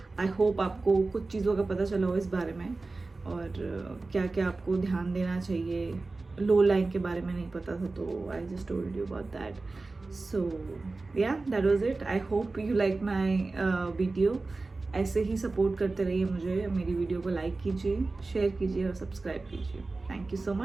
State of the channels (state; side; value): quieter; left; 3.5 dB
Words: I hope आपको कुछ चीज़ों का पता चला हो इस बारे में और क्या क्या आपको ध्यान देना चाहिए. लो लाइन के बारे में नहीं पता था तो I just told you about that. So yeah that was it. I hope you like my video. ऐसे ही सपोर्ट करते रहिए मुझे. मेरी वीडियो को लाइक कीजिए, शेयर कीजिए और सब्सक्राइब कीजिए. Thank you so